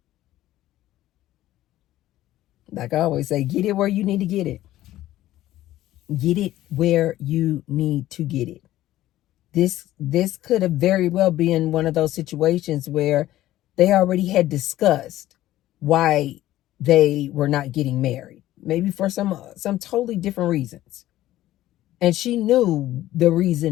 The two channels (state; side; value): quieter; right; 14.6 dB